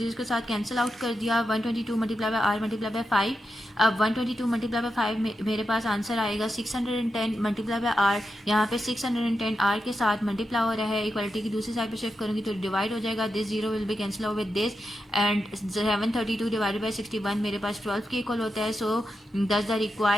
के साथ कैंसिल आउट कर दिया। 122 multiply by R multiply by 5। अब 122 मल्टीप्लाई बाय 5 मेरे पास आंसर आएगा 610 मल्टीप्लाई बाय आर। यहाँ पे 610 आर के साथ मल्टीप्लाई हो रहा है, इक्वालिटी की दूसरी साइड पे शिफ्ट करूंगी तो डिवाइड हो जाएगा। This zero will be cancel out with this and 732 divided by 61 मेरे पास 12 के इक्वल होता है। सो दस the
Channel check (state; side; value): normal; both; correlation 0.87